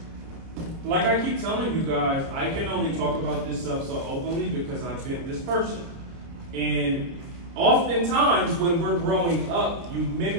Like I keep telling you guys, I can only talk about this stuff so openly because I've been this person. And oftentimes when we're growing up, you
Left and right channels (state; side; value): late; left; 30 ms